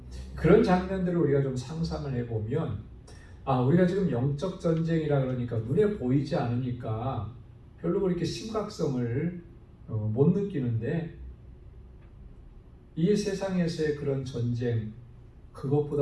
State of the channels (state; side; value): identical; both; correlation 1.00